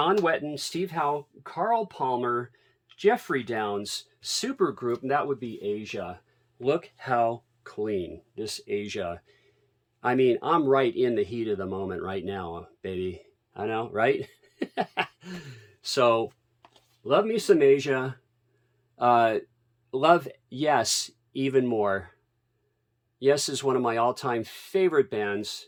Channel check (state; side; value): identical; both; correlation 1.00